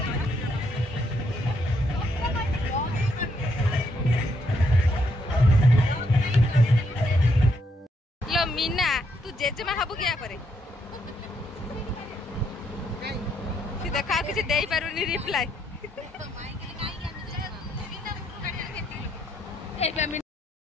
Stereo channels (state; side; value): normal; both; correlation 0.75